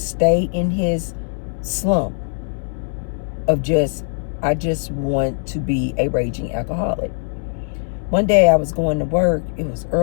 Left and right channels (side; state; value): right; silent; 63 dB below the other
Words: stay in his slump of I just want to be a raging alcoholic. One day I was going to work. It was